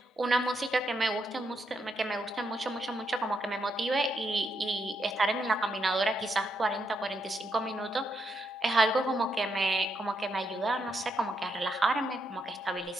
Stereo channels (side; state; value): both; normal; correlation 0.80